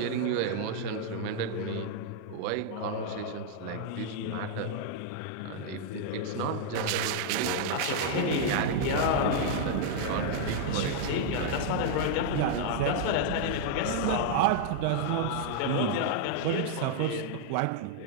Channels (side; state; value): both; different; correlation -0.01